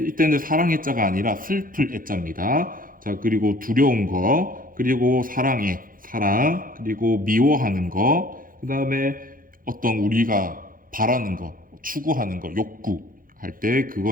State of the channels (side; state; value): left; late; 0.40 ms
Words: 사랑의 자가 아니라 슬플 애자입니다. 자, 그리고 두려운 거, 그리고 사랑의 사랑, 그리고 미워하는 거, 그 다음에 어떤 우리가 바라는 거, 추구하는 거, 욕구 할 때